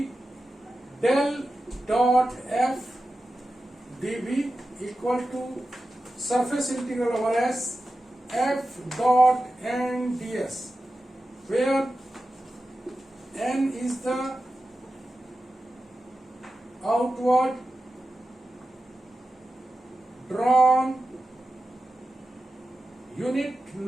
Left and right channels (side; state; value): both; normal; correlation 0.92